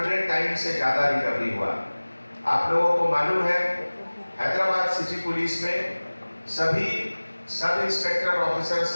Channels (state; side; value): inverted; both; correlation -1.00